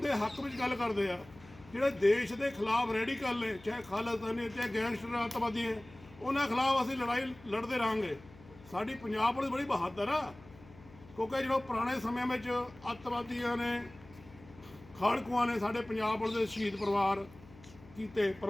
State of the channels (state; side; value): noise; left; hum, 22 dB below the sound